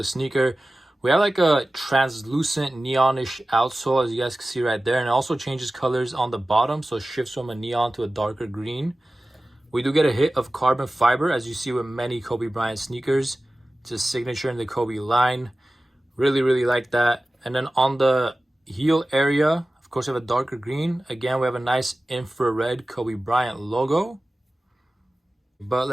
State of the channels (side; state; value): both; normal; correlation 0.96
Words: sneaker, we have like a translucent neonish outsole, as you guys can see right there. And it also changes colors on the bottom, so it shifts from a neon to a darker green. We do get a hit of carbon fiber, as you see with many Kobe Bryant sneakers. It's a signature in the Kobe line. Really like that. And then on the heel area, of course, we have a darker green. Again, we have a nice infrared Kobe Bryant logo. But